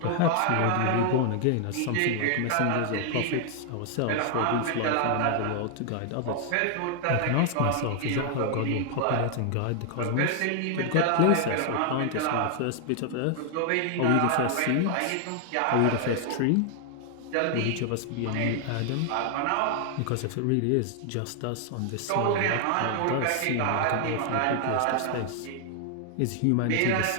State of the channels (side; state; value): both; different; correlation 0.00